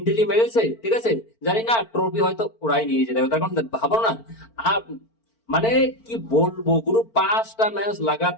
মেরেছে, ঠিক আছে, জানি না ট্রফি হয়তো ওরাই নিয়ে যেতে হবে। তার কারণ ভাবো না, আর মানে কি বলবো, পুরো 5টা ম্যাচ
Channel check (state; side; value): late; right; 4.4 ms